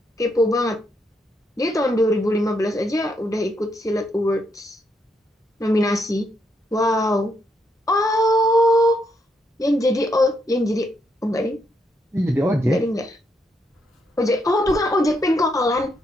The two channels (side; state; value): both; normal; correlation 0.77